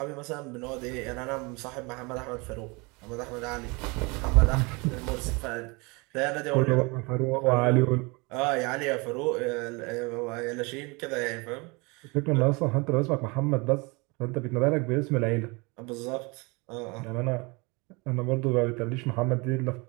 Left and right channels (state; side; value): quieter; left; 27.6 dB